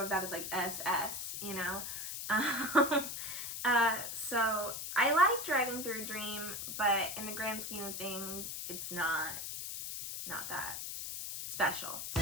that is like SS, you know? So I like Driving Through a Dream, but in the grand scheme of things, it's not that special.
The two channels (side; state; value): left; noise; hiss, 5 dB below the sound